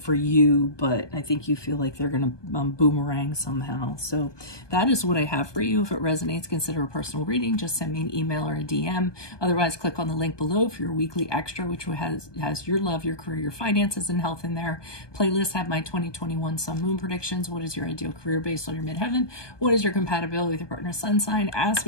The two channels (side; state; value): right; late; 1.2 ms